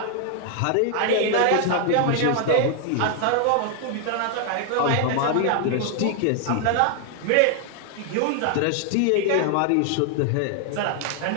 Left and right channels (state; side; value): different; both; correlation 0.00